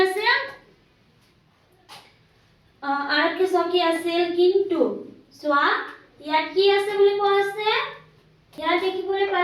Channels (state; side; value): identical; both; correlation 1.00